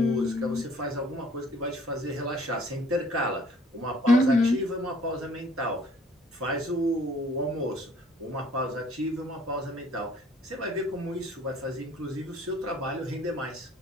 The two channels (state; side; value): normal; both; correlation 0.57